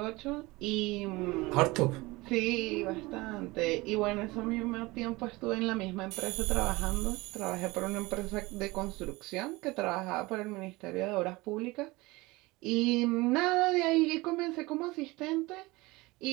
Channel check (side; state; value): left; quieter; 22.0 dB